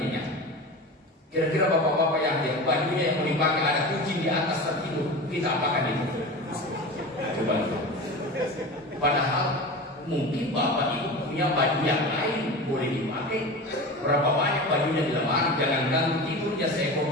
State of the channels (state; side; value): normal; both; correlation 0.30